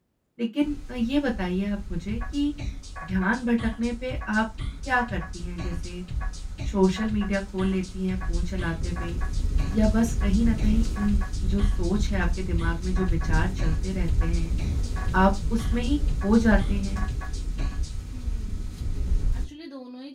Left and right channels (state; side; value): identical; both; correlation 1.00